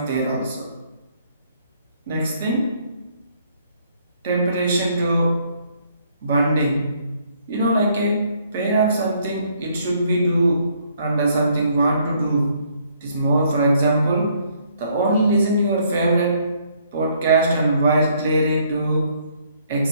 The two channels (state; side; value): inverted; both; correlation -0.67